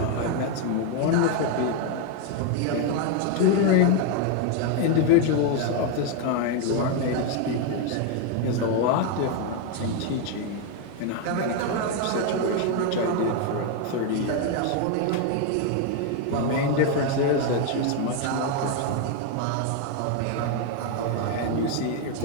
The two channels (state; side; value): different; both; correlation 0.01